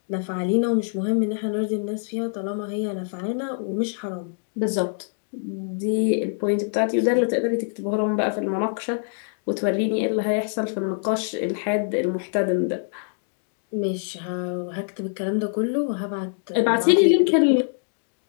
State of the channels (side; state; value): right; silent; 62 dB below the other